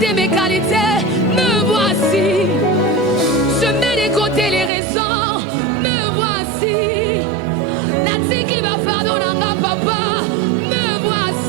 mes qualités. Me voici. Je mets de côté les raisons. Me voici. Natiki va fardo nanga papa. Me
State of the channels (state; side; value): drops out; left; at 4.7 s